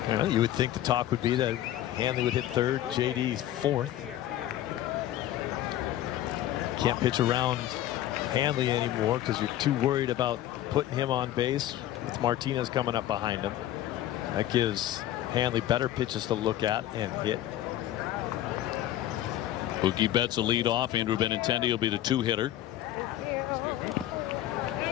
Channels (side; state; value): right; quieter; 13.2 dB